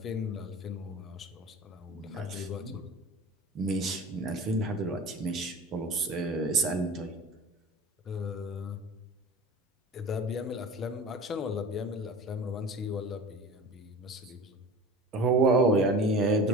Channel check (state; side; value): normal; both; correlation 0.36